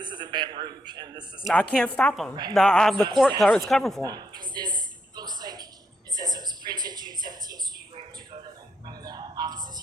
is in Baton Rouge, and this is. I can't stop them. Right. The court is covering for them. Because this looks like, it says it was printed June 17th, so you were able to go to one of the offices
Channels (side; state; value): both; normal; correlation 0.79